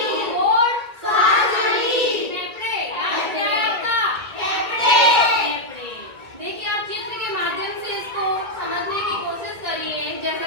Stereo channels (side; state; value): left; late; 2.1 ms